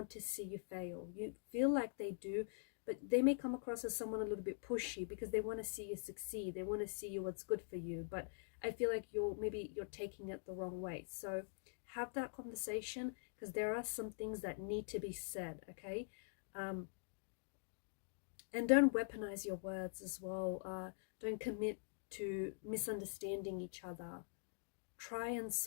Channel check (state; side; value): silent; right; digital silence